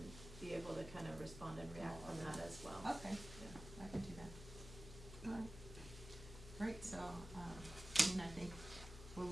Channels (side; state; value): left; noise; hum, 12 dB below the sound